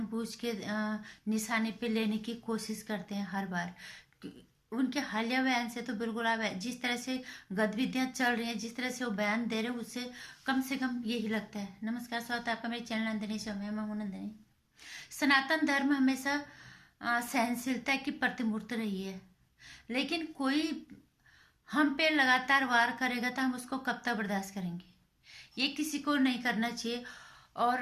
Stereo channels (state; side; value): identical; both; correlation 1.00